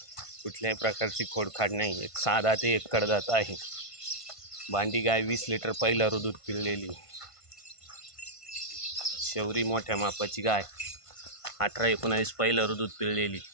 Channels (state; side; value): late; right; 1.5 ms